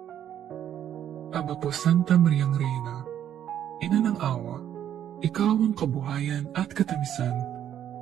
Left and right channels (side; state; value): left; quieter; 10.2 dB